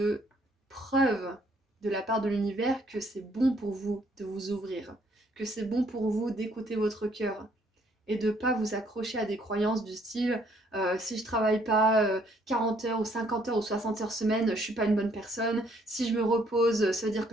preuves de la part de l'univers que c'est bon pour vous de vous ouvrir, que c'est bon pour vous d'écouter votre cœur et de ne pas vous accrocher à des croyances du style si je travaille pas 40 heures ou 50 heures ou 60 heures semaine, je suis pas une bonne personne, si je me repose, ça veut dire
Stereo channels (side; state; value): both; normal; correlation 0.66